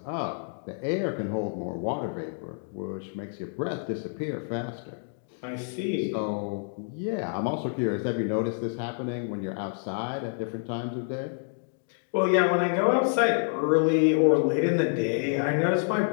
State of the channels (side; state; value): right; silent; digital silence